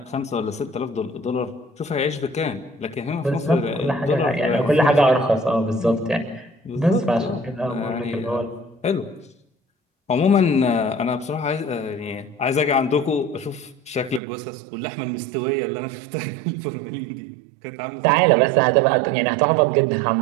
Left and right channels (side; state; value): left; drops out; at 14.2 s